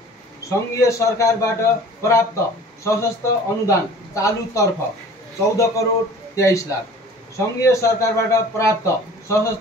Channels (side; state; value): both; normal; correlation 0.46